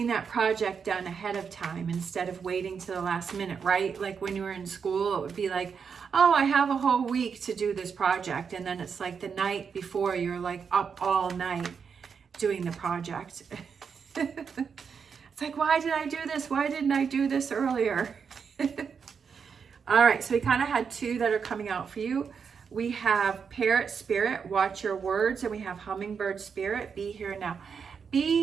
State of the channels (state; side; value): quieter; left; 6.3 dB